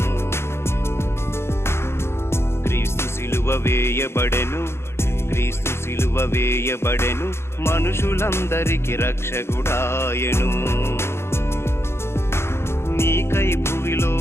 క్రీస్తు సిలువ వేయబడెను, క్రీస్తు సిలువ వేయబడెను, మనుషులందరికి రక్షకుడాయెను. నీకై భువిలో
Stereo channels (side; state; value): right; late; 0.12 ms